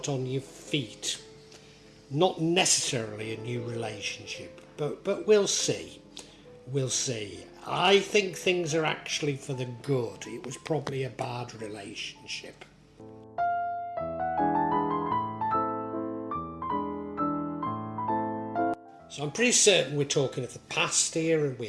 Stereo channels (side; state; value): both; identical; correlation 1.00